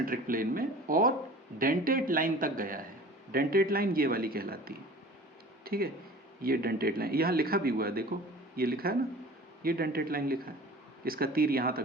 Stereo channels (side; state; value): both; normal; correlation 0.42